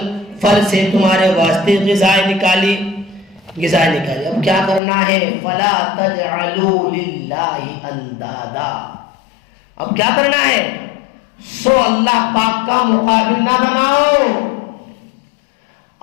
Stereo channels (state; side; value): drops out; right; at 4.8 s